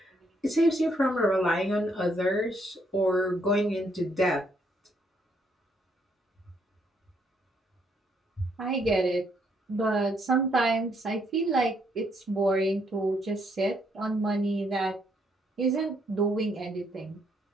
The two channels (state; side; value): normal; both; correlation 0.72